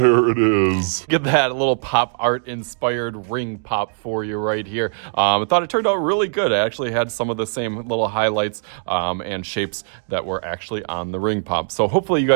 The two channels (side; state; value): left; silent; digital silence